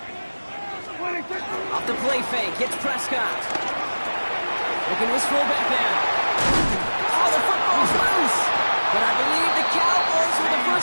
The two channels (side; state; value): both; inverted; correlation -1.00